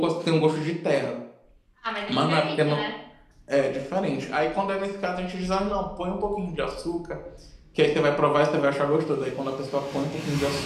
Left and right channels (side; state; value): both; identical; correlation 1.00